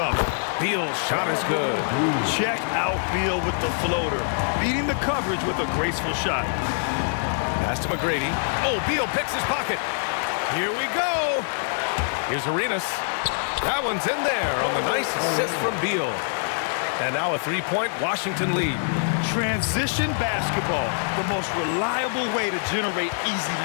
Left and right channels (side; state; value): right; silent; digital silence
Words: Beal's shot is good. Check out Beal with the floater. Beating the coverage with a graceful shot. Pass to McGrady. Oh, Beal picks his pocket. Here we go. Here's Arenas. That one's in there on the nice assist from Beal. And now a 3-point Washington lead. Transition basketball, the most reliable way to generate